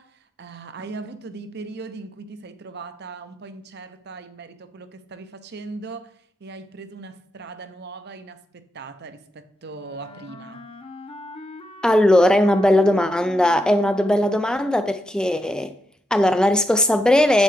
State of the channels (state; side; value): normal; both; correlation 0.84